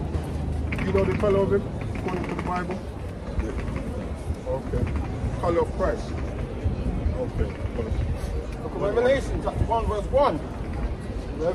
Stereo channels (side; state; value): both; identical; correlation 1.00